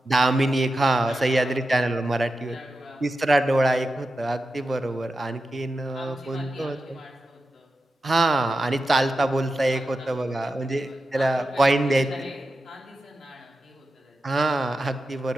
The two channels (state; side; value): normal; both; correlation 0.91